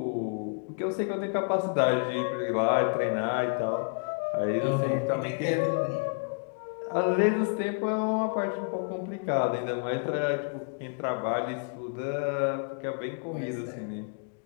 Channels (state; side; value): quieter; right; 38.9 dB